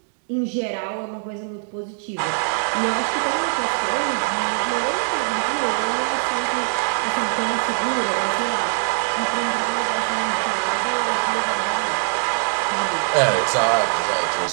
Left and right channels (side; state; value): left; silent; digital silence